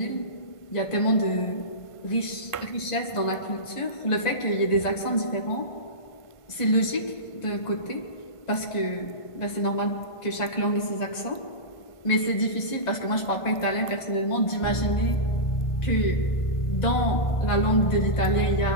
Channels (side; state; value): right; late; 1.5 ms